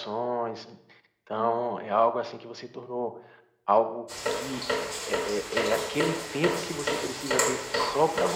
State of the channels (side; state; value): both; identical; correlation 1.00